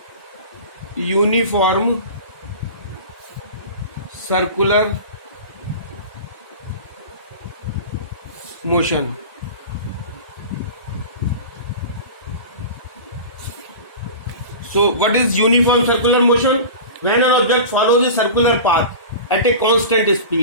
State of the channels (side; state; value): both; inverted; correlation -0.33